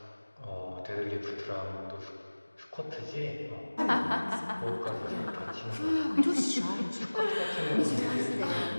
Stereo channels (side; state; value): both; inverted; correlation -1.00